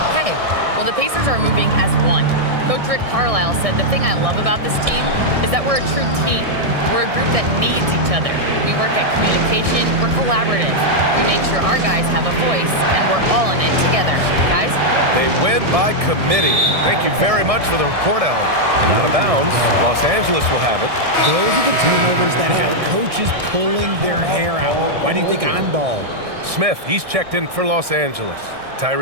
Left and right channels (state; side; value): late; left; 1.6 ms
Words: Hey, well, the Pacers are moving as one. Coach Rick Carlisle said the thing I love about this team is that we're a true team. We're a group that needs each other. We work at communication. We're collaborative. We make sure our guys have a voice, and we're all in it together. Guys? They win by committee. Thank you very much for the report, Hali. And out of bounds, Los Angeles will have it. Those are the turnovers that have coaches pulling their hair out. Why do you think I'm bald? Smith, he's checked in for Los Angeles.